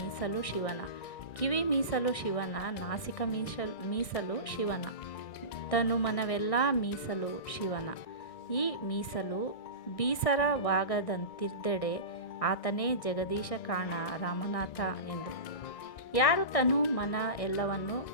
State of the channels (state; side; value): late; right; 1.6 ms